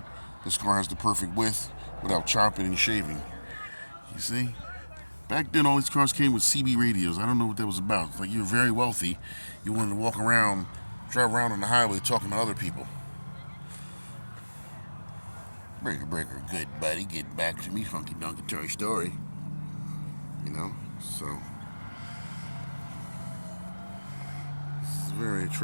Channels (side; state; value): both; inverted; correlation -1.00